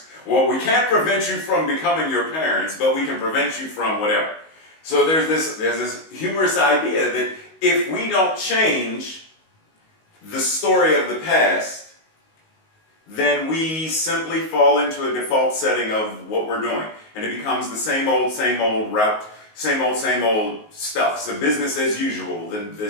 Well, we can't prevent you from becoming your parents, but we can prevent you from whatever. So there's this humorous idea that if we don't change the story of the past, then we simply fall into a default setting of what we're doing. And it becomes the same old route, same old stuff. So business as usual,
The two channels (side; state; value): right; late; 19 ms